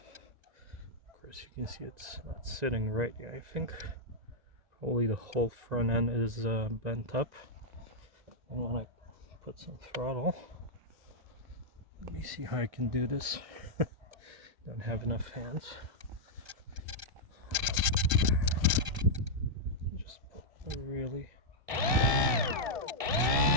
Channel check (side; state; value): left; late; 1.7 ms